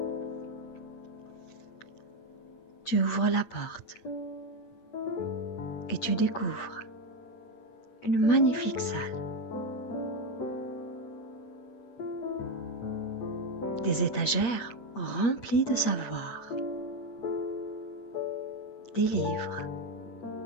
Tu ouvres la porte et tu découvres une magnifique salle. Des étagères remplies de savoir, des livres,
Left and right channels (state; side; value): late; right; 8.4 ms